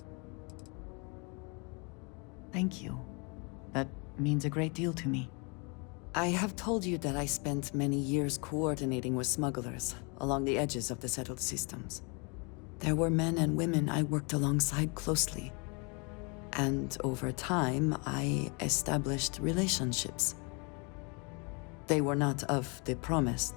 Thank you. That means a great deal to me. I have told you that I spent many years coordinating with smugglers along the edges of the settled systems. There were men and women I worked alongside closely. And over time, I established relationships. They were not of the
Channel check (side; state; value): right; quieter; 32.2 dB